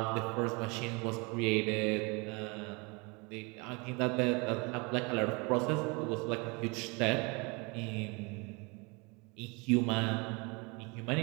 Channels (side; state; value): left; quieter; 29.1 dB